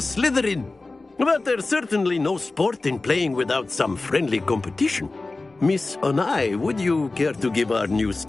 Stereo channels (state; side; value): quieter; right; 3.3 dB